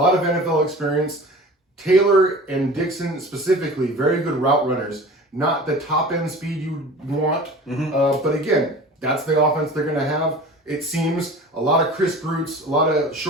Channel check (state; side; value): normal; both; correlation 0.39